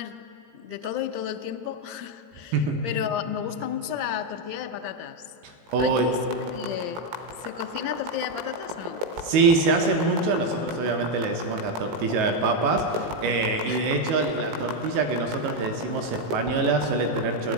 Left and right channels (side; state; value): left; late; 19 ms